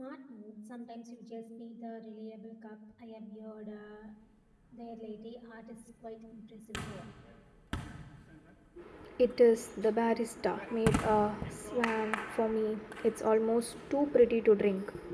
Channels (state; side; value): identical; both; correlation 1.00